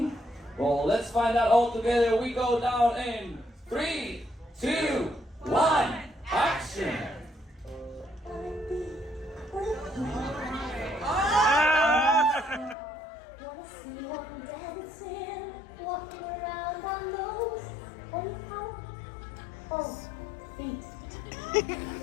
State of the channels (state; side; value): drops out; right; at 12.8 s